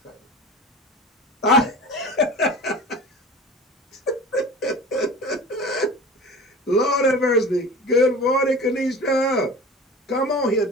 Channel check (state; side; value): normal; both; correlation 0.37